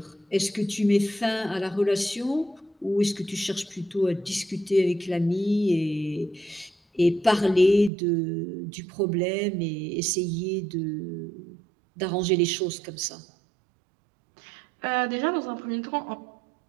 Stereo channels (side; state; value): left; drops out; at 7.9 s